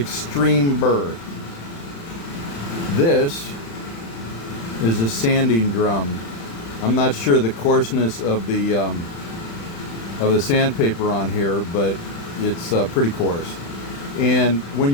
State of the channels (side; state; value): right; late; 35 ms